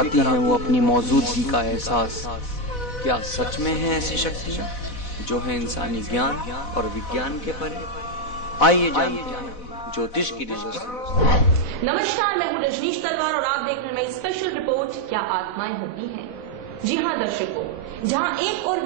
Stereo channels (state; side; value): late; right; 4.1 ms